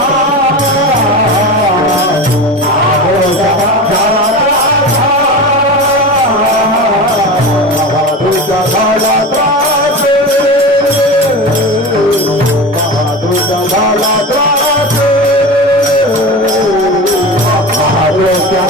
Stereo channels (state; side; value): normal; both; correlation 0.27